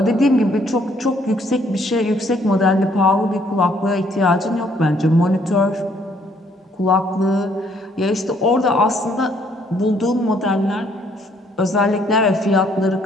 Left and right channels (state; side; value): normal; both; correlation 0.66